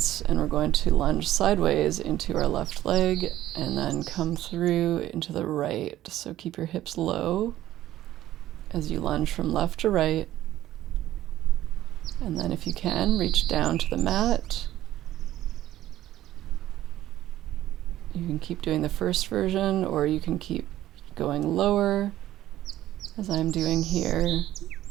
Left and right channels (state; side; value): quieter; left; 13.7 dB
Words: and we're going to lunge sideways into our left leg and then come through into the right. So keep your hips low as you lunge from left to right. And then if you can, reach down to the mat. You can keep doing the first version, or you can keep going lower, as I'm doing here,